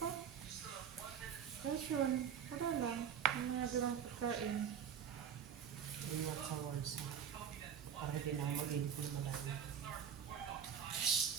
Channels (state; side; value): quieter; left; 8.0 dB